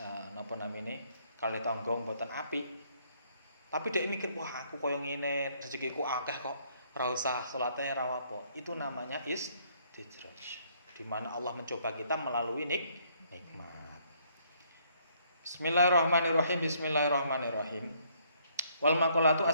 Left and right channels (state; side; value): inverted; both; correlation -0.67